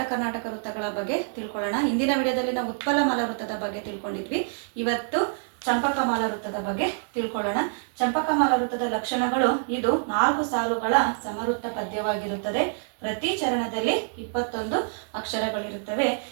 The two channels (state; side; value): silent; left; digital silence